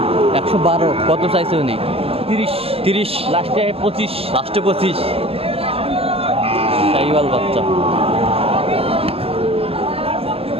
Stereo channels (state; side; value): late; left; 0.28 ms